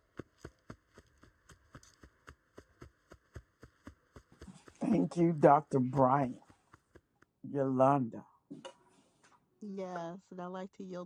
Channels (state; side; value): identical; both; correlation 1.00